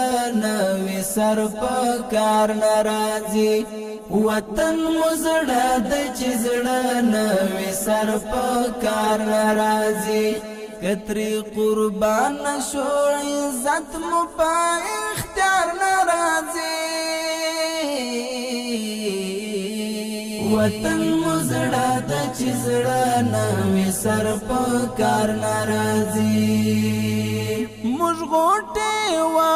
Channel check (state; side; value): identical; both; correlation 1.00